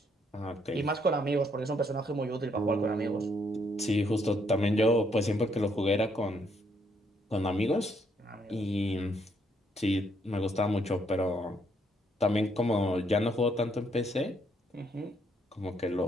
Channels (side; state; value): both; normal; correlation 0.71